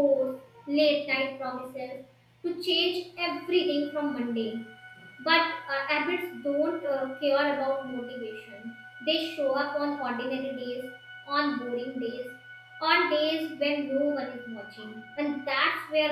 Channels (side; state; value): both; identical; correlation 1.00